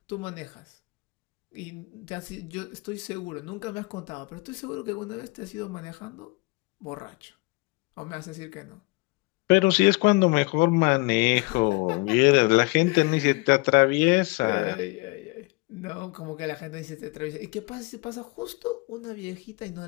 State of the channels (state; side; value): quieter; right; 26.4 dB